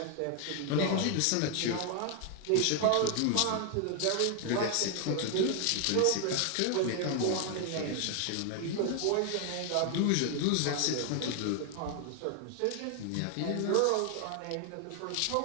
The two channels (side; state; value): both; different; correlation 0.00